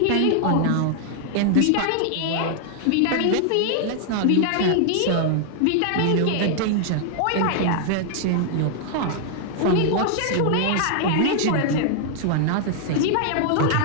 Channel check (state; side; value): different; both; correlation 0.00